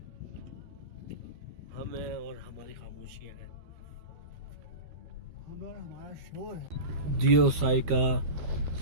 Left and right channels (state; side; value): late; left; 12 ms